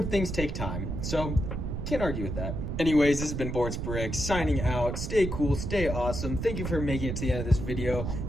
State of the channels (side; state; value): right; noise; rumble, 4 dB below the sound